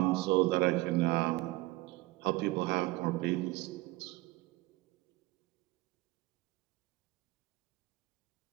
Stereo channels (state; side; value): quieter; left; 20.8 dB